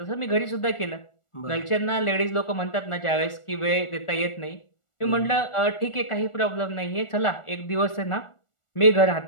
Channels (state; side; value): late; right; 1.4 ms